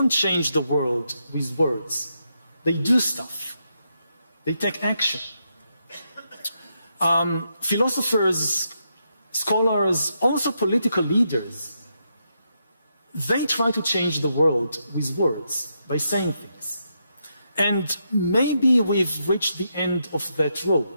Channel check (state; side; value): inverted; both; correlation -0.81